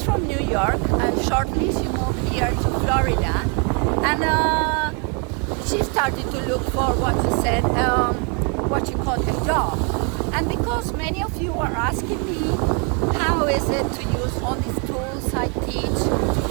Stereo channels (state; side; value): quieter; left; 36.5 dB